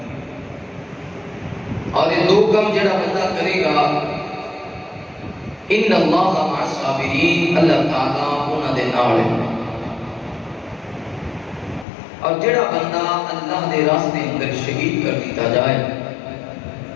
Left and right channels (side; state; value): right; drops out; at 11.9 s